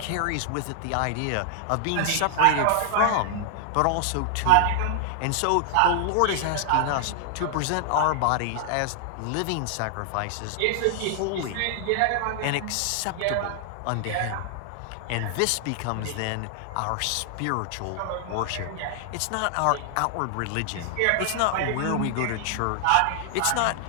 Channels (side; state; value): both; different; correlation 0.00